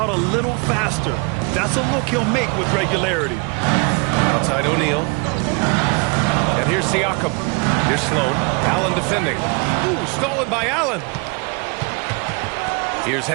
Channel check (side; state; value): left; quieter; 30.9 dB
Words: a little faster. That's a look he'll make with regularity. Outside O'Neal. And here's Siakam. Here's Sloan. Allen defending. Ooh, stolen by Allen. Here's